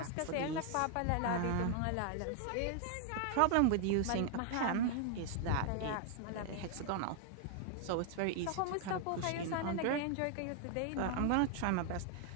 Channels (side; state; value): both; different; correlation 0.00